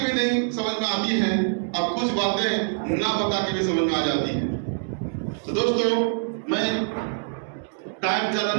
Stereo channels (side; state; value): left; silent; digital silence